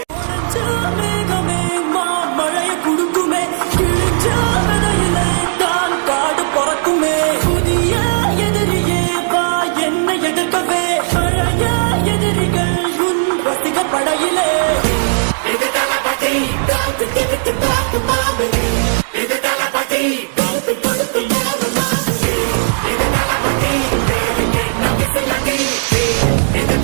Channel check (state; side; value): silent; left; digital silence